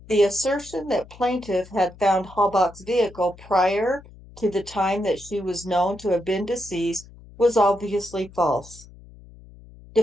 the assertion that plaintiff had found Halbach's vehicle prior to the time that she was known to have been deceased was obviously false.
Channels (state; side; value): noise; left; hum, 21 dB below the sound